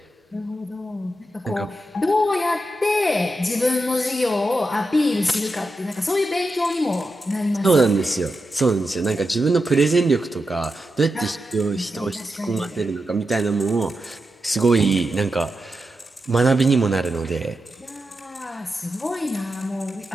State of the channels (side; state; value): both; normal; correlation 0.88